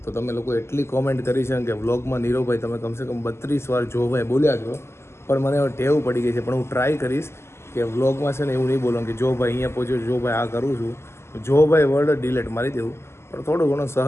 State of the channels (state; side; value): late; right; 0.12 ms